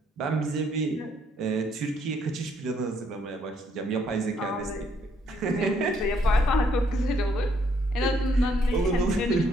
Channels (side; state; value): both; normal; correlation 0.70